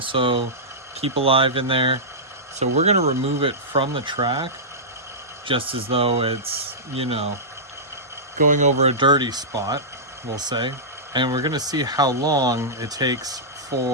Keep Alive in there. So we're going to remove it from the track, just as though it's, you know, going over a dirty spot, we'll say. And we're going to see how long it takes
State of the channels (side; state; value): both; normal; correlation -0.14